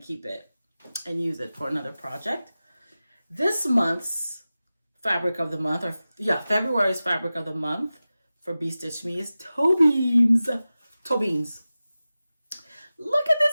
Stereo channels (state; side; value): inverted; both; correlation -0.96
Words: it and use it for another project. This month's fabric of the month, February's fabric of the month for Bee Stitch Me is toe beans. Toe beans. Look at